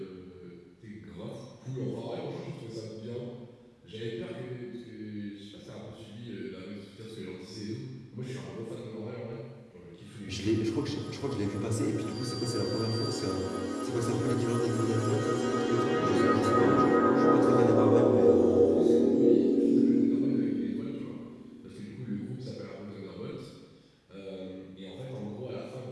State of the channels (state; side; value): identical; both; correlation 1.00